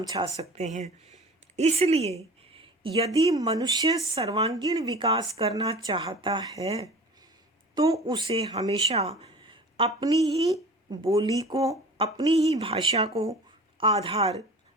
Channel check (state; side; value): normal; both; correlation 0.40